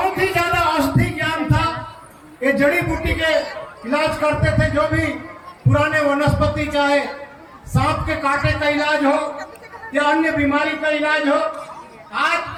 ही ज्यादा औषधि ज्ञान था। ये जड़ी बूटी के इलाज करते थे, जो भी पुराने वनस्पति, चाहे सांप के कांटे का इलाज हो या अन्य बीमारी का इलाज हो। आज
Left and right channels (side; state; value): both; identical; correlation 1.00